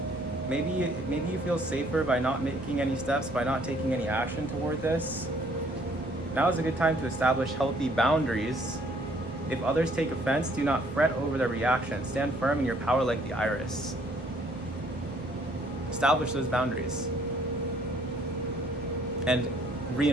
Maybe you feel safer by not making any steps, by not taking any action toward this. Now is a good time to establish healthy boundaries. If others take offense, do not fret over their reaction. Stand firm in your power like the iris. Establish those boundaries. And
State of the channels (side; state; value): both; normal; correlation 0.62